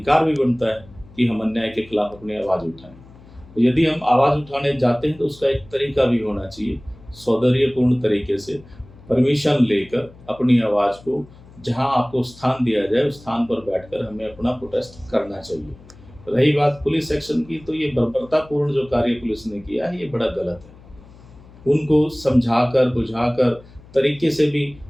भी बनता है कि हम अन्याय के खिलाफ अपनी आवाज़ उठाएं। तो यदि हम आवाज़ उठाने जाते हैं तो उसका एक तरीका भी होना चाहिए, सौंदर्यपूर्ण तरीके से परमिशन लेकर अपनी आवाज़ को जहां आपको स्थान दिया जाए उस स्थान पर बैठकर हमें अपना प्रोटेस्ट करना चाहिए। रही बात पुलिस एक्शन की, तो ये बर्बरतापूर्ण जो कार्य पुलिस ने किया है ये बड़ा गलत है। उनको समझाकर बुझाकर तरीके से भी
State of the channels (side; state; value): left; noise; hum, 22 dB below the sound